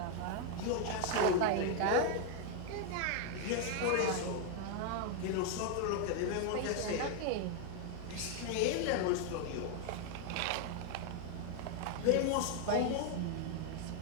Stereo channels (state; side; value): different; both; correlation 0.00